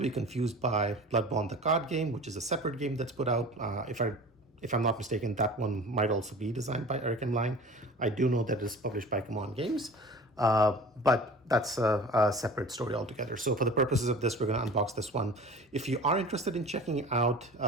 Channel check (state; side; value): normal; both; correlation 0.40